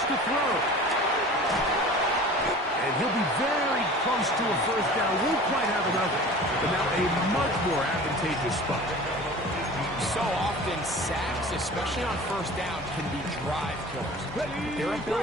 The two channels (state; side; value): normal; both; correlation 0.41